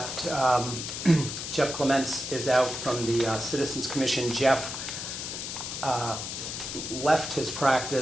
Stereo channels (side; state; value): left; noise; hiss, 6 dB below the sound